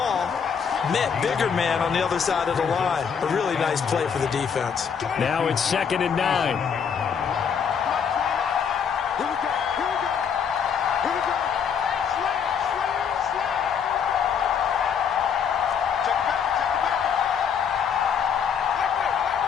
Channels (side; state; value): right; quieter; 7.1 dB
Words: met bigger man on the other side of the line. A really nice play for the defense. Now it's 2nd and 9. Here we go. Slam. Check it back.